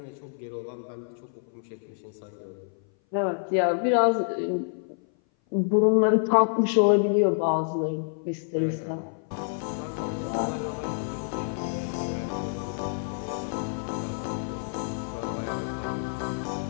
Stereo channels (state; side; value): silent; right; 57 dB below the other